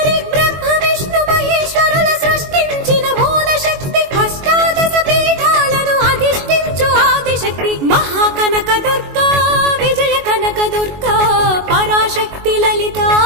బ్రహ్మ విష్ణు మహేశ్వరుల సృష్టించిన మూల శక్తి అష్టాదశ పీఠాలను అధిష్ఠించు ఆదిశక్తి మహాకనకదుర్గా విజయ కనకదుర్గా పరాశక్తి లలితా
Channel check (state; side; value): late; left; 21 ms